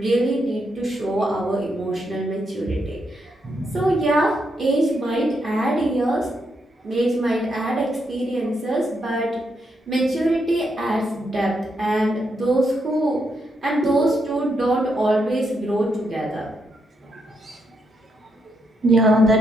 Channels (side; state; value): both; normal; correlation 0.80